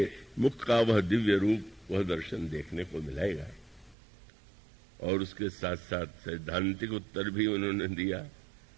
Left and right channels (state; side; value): drops out; left; at 4.0 s